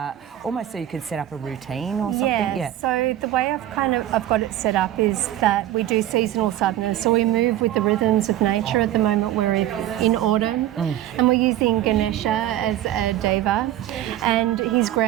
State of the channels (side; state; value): left; quieter; 12.9 dB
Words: almost so you could set up a routine or something. Yeah. So the way I've got it set up is that we do seasonal sadhanas. So we move with the rhythms of nature. At the moment we're in autumn, and we're using Ganesha as a deva, and he's